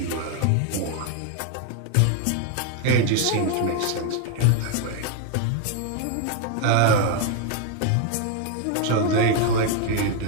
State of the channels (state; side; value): different; both; correlation 0.00